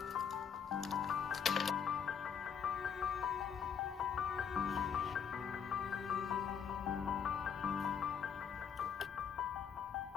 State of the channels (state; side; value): quieter; right; 7.4 dB